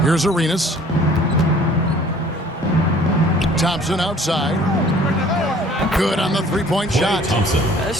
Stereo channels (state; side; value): normal; both; correlation 0.53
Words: Here's Arenas. Thompson outside. Good on the three-point shot.